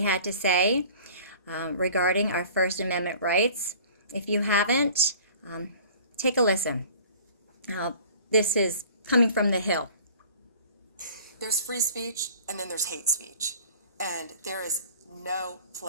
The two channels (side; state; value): both; inverted; correlation -0.47